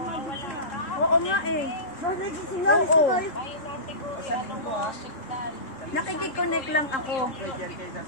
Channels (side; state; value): right; late; 3.7 ms